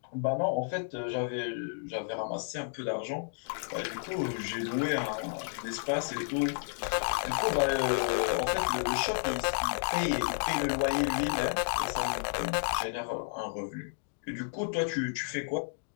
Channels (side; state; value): right; silent; digital silence